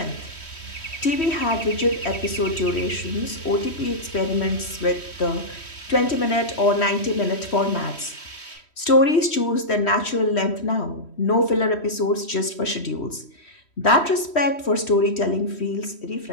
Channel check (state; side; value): late; right; 3.1 ms